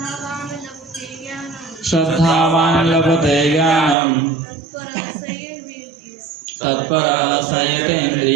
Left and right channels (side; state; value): left; drops out; at 4.0 s